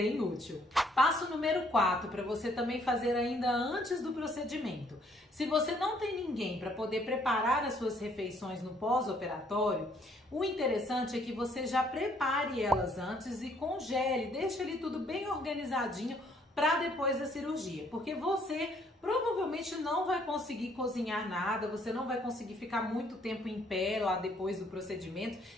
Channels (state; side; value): normal; both; correlation 0.65